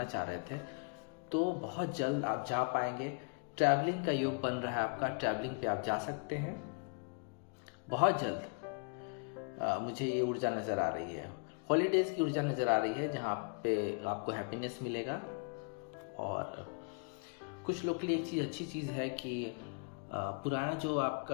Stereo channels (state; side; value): quieter; right; 36.1 dB